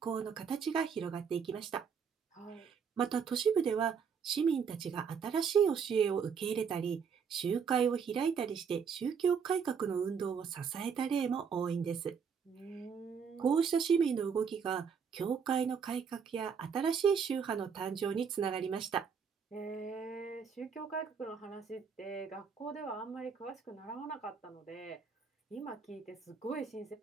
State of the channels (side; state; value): left; quieter; 6.5 dB